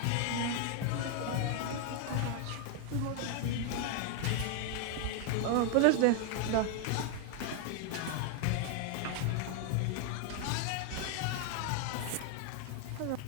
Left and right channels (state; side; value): different; both; correlation 0.00